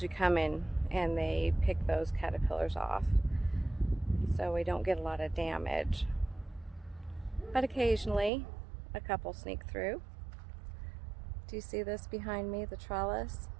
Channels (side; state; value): left; drops out; at 8.3 s